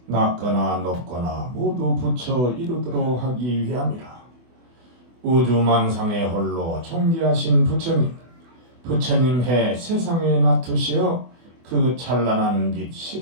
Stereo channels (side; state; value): left; late; 24 ms